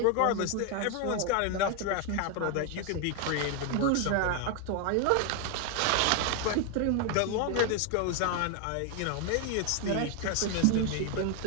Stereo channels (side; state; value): both; different; correlation 0.01